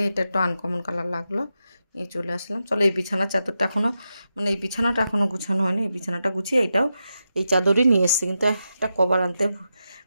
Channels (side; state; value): both; inverted; correlation -0.88